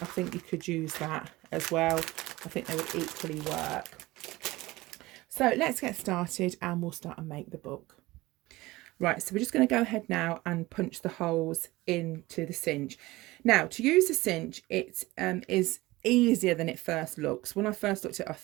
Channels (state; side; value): quieter; left; 19.6 dB